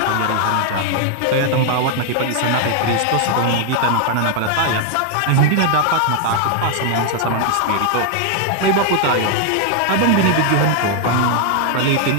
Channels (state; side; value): different; both; correlation 0.00